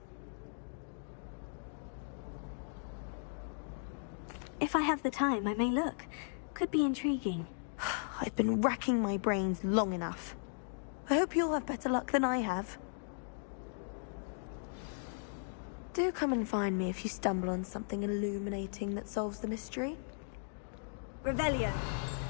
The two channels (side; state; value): right; silent; digital silence